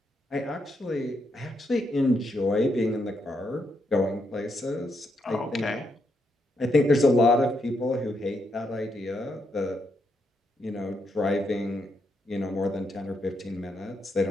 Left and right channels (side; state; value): both; normal; correlation 0.80